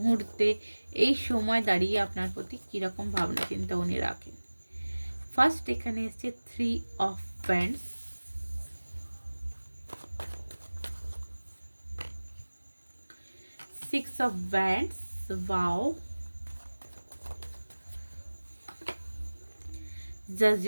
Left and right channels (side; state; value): both; inverted; correlation -1.00